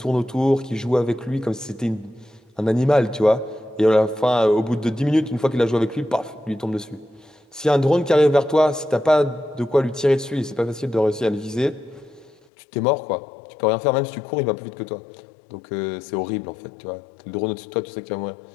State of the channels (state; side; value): drops out; right; at 12.4 s